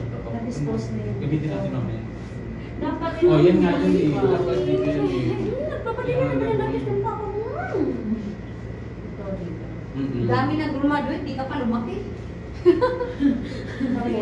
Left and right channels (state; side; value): identical; both; correlation 1.00